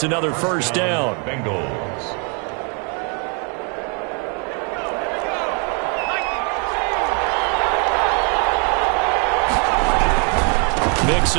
another 1st down. Bengals. Mixon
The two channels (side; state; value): left; quieter; 36.4 dB